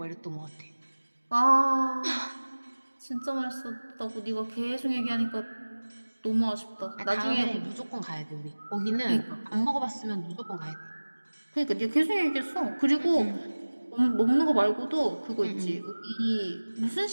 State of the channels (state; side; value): inverted; both; correlation -1.00